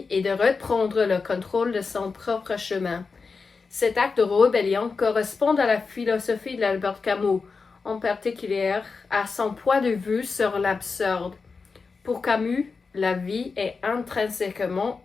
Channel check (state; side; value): quieter; right; 4.7 dB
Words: et de reprendre le contrôle de son propre chemin. Cet acte de rébellion correspond à la philosophie d'Albert Camus, en particulier à son point de vue sur l'absurde. Pour Camus, la vie est intrinsèquement